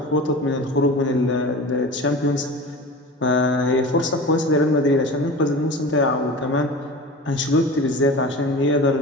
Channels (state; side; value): normal; both; correlation 0.34